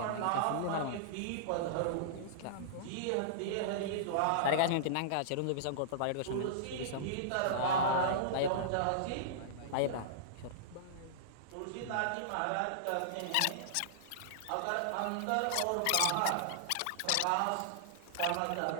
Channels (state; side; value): different; both; correlation -0.02